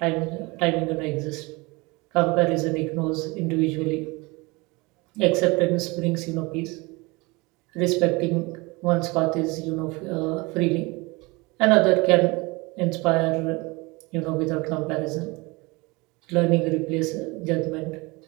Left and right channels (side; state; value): left; quieter; 25.2 dB